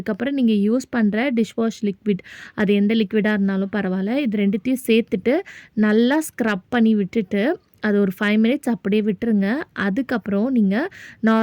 நீங்கள் யூஸ் பண்ணுற டிஷ்வாஷ் லிக்விட், அது எந்த லிக்விடாக இருந்தாலும் பரவாயில்ல, இது ரெண்டுத்தையும் சேர்த்துட்டு நல்லா ஸ்க்ரப் பண்ணி விட்டுட்டு அது ஒரு 5 மினிட்ஸ் அப்படியே விட்டுருங்க. அதுக்கப்புறம் நீங்கள்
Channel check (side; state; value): both; identical; correlation 1.00